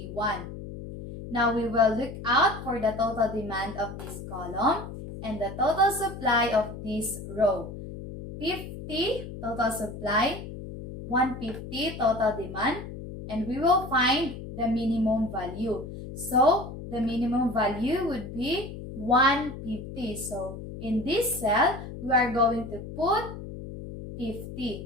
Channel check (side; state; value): left; noise; hum, 10 dB below the sound